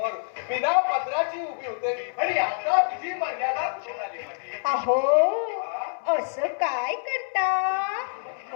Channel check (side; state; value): right; silent; 61 dB below the other